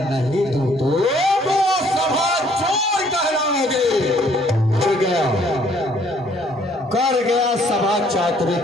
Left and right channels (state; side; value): normal; both; correlation 0.62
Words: नहीं दूं तो सभा चोर कहलाओगे। कर गया सभा चातुर्य